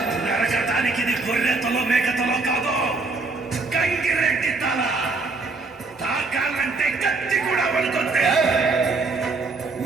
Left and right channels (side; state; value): left; quieter; 3.7 dB